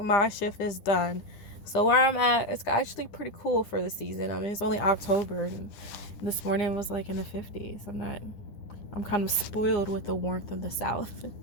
shift is done. So where I'm at, it's actually pretty cool for the season. I mean, it's only October and this morning was like in the 50s. I'm kind of spoiled with the warmth of the South.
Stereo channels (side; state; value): right; late; 10 ms